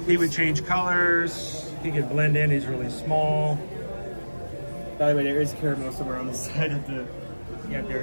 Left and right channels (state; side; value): inverted; both; correlation -1.00